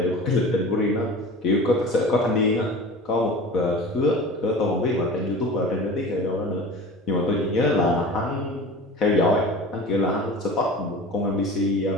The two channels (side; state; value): both; normal; correlation 0.36